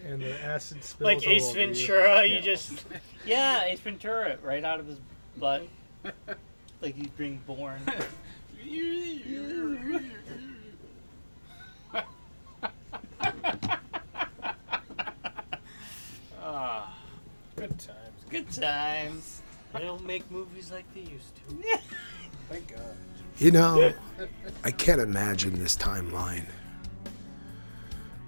And the acid spills Like all Ace over you. Ventura, you just Yeah, Ace Ventura, right out of his butt. Like he's being born. Good times. Good times. They don't make movies like they used to. Thank God. You know, I can't imagine this timeline.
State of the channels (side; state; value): both; inverted; correlation -1.00